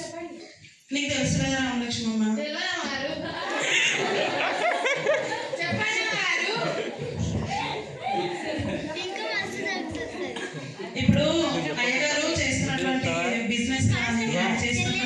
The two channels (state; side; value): identical; both; correlation 1.00